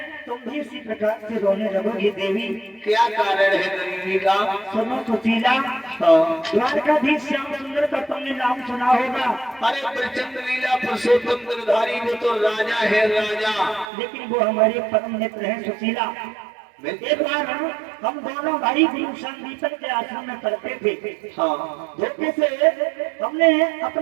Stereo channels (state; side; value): drops out; left; at 13.9 s